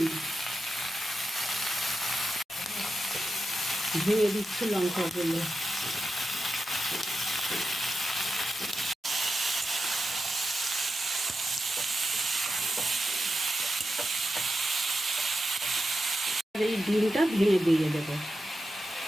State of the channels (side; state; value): both; normal; correlation 0.89